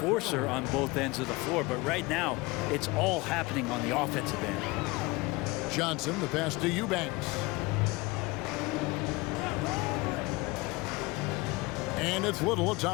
on both ends of the floor, but right now it's all happening on the offensive end. Johnson, the pass to Eubanks. And it's Little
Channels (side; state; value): right; quieter; 23.4 dB